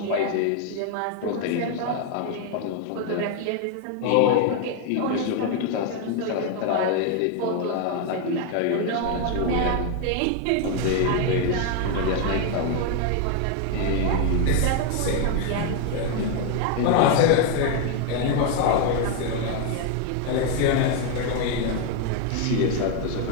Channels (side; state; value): both; different; correlation 0.01